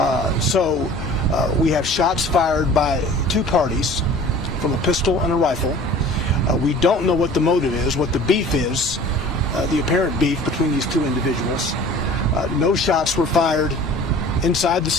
So we have shots fired by two parties from a pistol and a rifle. We don't know what the motive is, what the beef is, the apparent beef between these two individuals. No shots were fired inside the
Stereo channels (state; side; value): normal; both; correlation 0.45